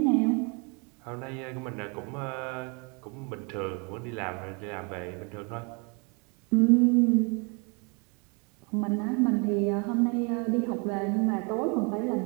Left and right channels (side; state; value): left; quieter; 33.1 dB